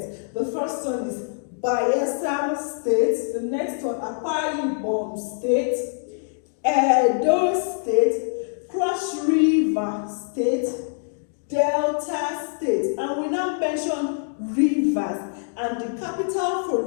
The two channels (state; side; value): silent; right; digital silence